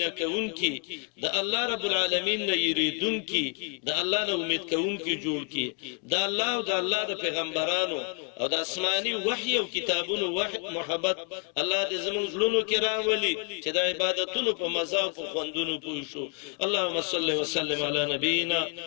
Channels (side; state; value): right; quieter; 39.3 dB